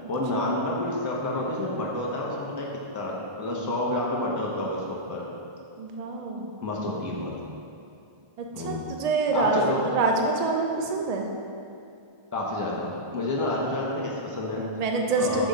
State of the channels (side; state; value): left; late; 1.8 ms